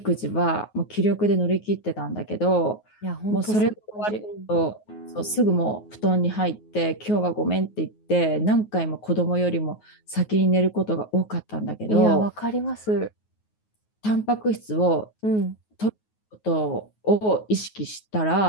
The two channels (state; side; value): late; right; 9.4 ms